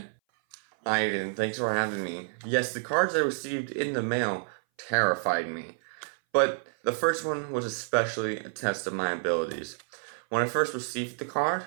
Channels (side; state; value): left; silent; 58 dB below the other